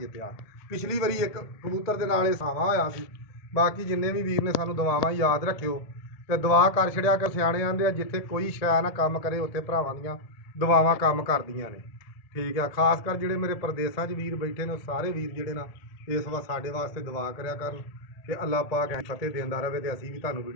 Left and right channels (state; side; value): late; right; 1.8 ms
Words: ਪਿਛਲੀ ਵਾਰੀ ਇੱਕ ਕਬੂਤਰ ਦੇ ਨਾਲ ਇਹ ਸਾਵਾਂ ਹੋਇਆ ਸੀ ਬਾਕੀ ਜਿੰਨੇ ਵੀ ਵੀਰ ਨੇ ਸਾਨੂੰ ਦੁਆਵਾਂ ਯਾਦ ਰੱਖਿਓ ਤੇ ਦੁਆ ਕਰ ਛੜਿਆ ਕਿ ਸਿਆਣੇ ਆਂਦੇ ਆ ਜਿੱਥੇ ਕੋਈ ਸ਼ੈ ਨਾ ਕੰਮ ਕਰੇ ਉੱਥੇ ਭਰਾਵਾਂ ਦੀਆਂ ਦੁਆਵਾਂ ਕੰਮ ਕਰਦੀਆਂ ਨੇ ਠੀਕ ਆ ਖਾਸ ਕਰ ਜਿਹੜੇ ਮੇਰੇ ਪ੍ਰਦੇਸ਼ਾਂ 'ਚ ਵੀਰ ਬੈਠੇ ਨੇ ਸਾਰੇ ਵੀਰ ਜਿਹੜੇ ਨਾ ਇਸ ਵਾਰ ਸਾਡੇ ਵਾਸਤੇ ਦੁਆ ਕਰਿਆ ਕਰਨ ਕਿ ਅੱਲਾਹ ਪਾਕ ਫਤਿਹ ਦਿੰਦਾ ਰਹੇ ਤੇ ਅਸੀਂ ਵੀ ਤੁਹਾਨੂੰ